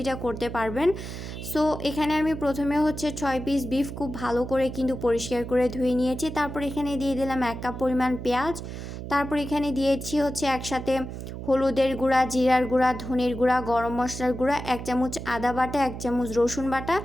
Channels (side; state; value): right; noise; hum, 8 dB below the sound